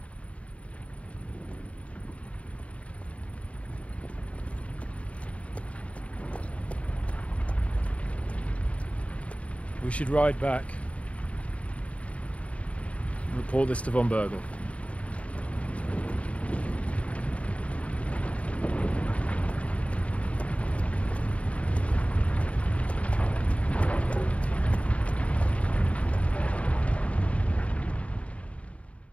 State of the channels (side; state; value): right; late; 0.063 ms